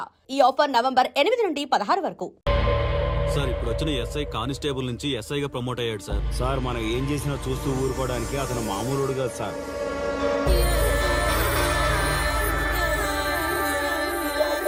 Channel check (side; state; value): both; identical; correlation 1.00